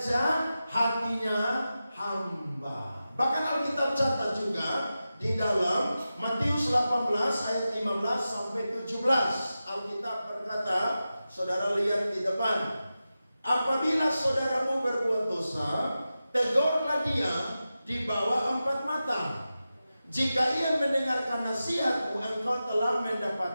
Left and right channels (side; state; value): both; inverted; correlation -0.93